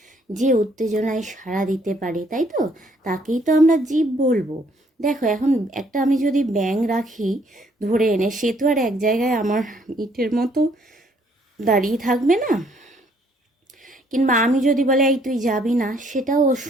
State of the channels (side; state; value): both; normal; correlation 0.65